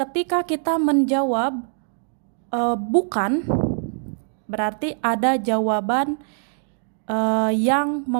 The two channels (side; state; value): left; silent; 63 dB below the other